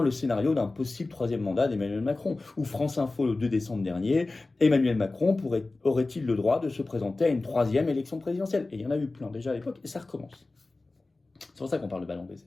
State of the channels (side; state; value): right; quieter; 3.3 dB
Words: le scénario d'un possible 3e mandat d'Emmanuel Macron. Ou France Info le 2 décembre dernier, Emmanuel Macron aurait-il le droit de se présenter à une 3e élection présidentielle? Et il y en a eu plein déjà à l'époque, et ça recommence. C'est pour ça qu'on parle de ballon d'essai.